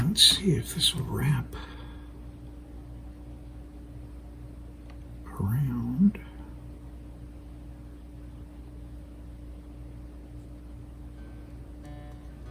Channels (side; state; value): both; identical; correlation 1.00